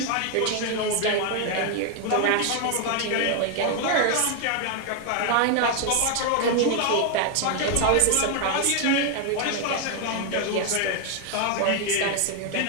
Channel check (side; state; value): both; different; correlation 0.01